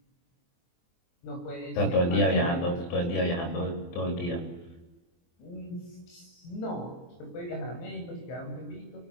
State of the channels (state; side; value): late; right; 23 ms